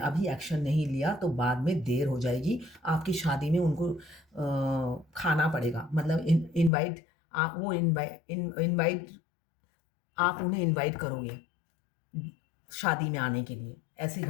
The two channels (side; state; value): right; drops out; at 6.7 s